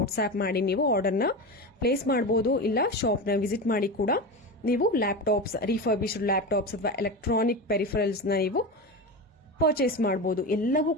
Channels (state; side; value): normal; both; correlation 0.22